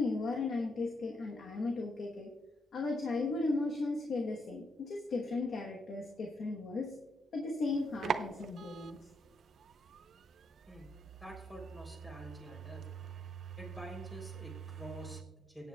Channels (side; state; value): both; normal; correlation 0.78